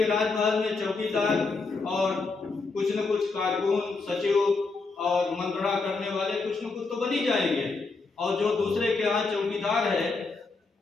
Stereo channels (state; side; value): quieter; right; 4.0 dB